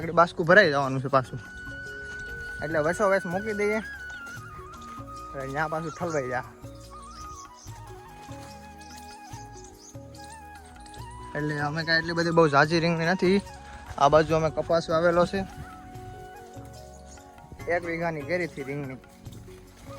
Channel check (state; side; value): identical; both; correlation 1.00